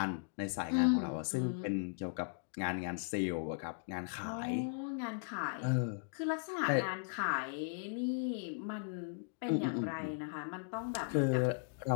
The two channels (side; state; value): right; silent; digital silence